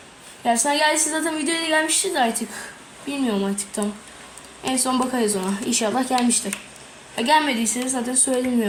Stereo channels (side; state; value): both; identical; correlation 1.00